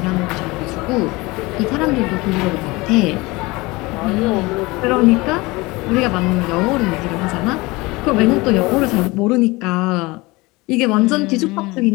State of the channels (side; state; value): right; quieter; 22.8 dB